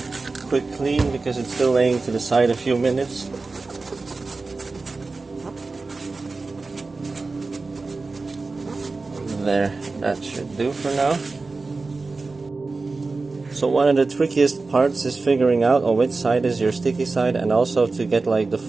quick clean because it's still laying to the side a few minutes. There, that should do for now. So one of the trickiest parts is figuring out on which side is your sticky side, and also to get like the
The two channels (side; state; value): left; quieter; 3.8 dB